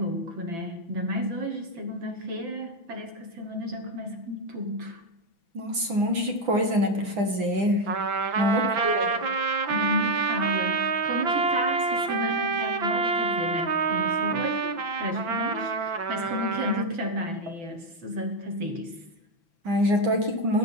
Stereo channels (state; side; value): late; left; 6.0 ms